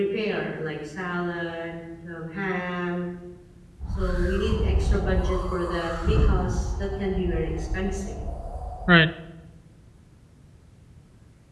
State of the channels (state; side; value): identical; both; correlation 1.00